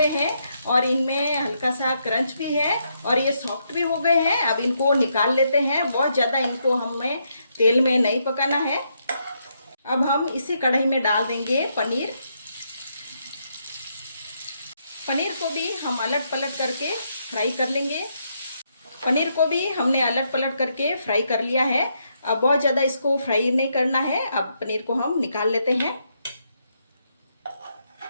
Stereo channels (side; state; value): both; inverted; correlation -0.78